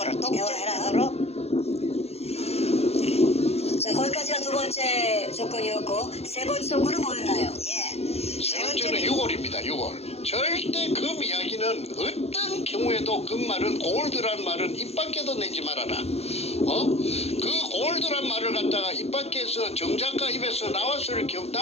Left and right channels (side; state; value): right; late; 0.30 ms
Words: 대화해라. 자, 거기까지가 두 번째 조건이었고 세 번째 조건은 뭐였나요? 세 번째는 6월입니다. 6월. 절대 금 이야기는 어떤 경우에도 그 말은 골드란 말은 입 밖에도 내지 말아라. 그 올드란 말을 갖다가 입 밖에서 정작가 입에서